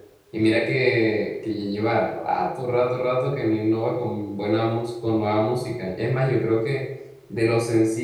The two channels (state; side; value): identical; both; correlation 1.00